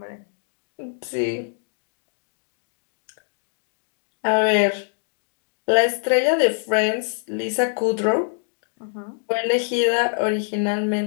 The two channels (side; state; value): right; silent; digital silence